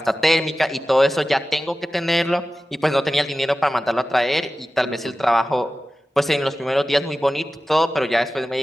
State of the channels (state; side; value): normal; both; correlation 0.95